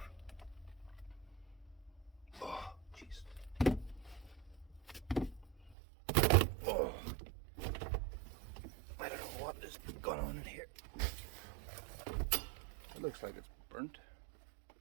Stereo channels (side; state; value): left; drops out; at 5.8 s